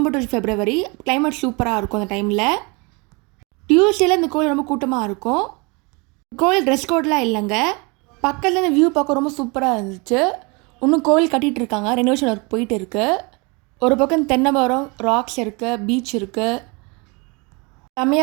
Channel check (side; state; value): left; quieter; 29.3 dB